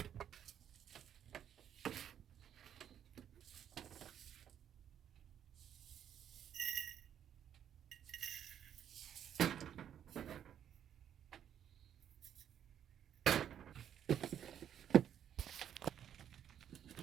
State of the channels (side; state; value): left; quieter; 9.6 dB